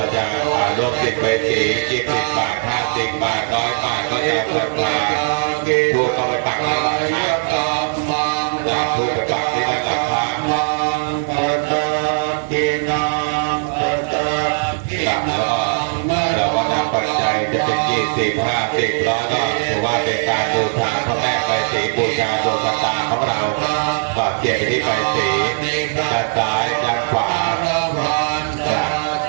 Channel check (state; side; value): silent; left; 66 dB below the other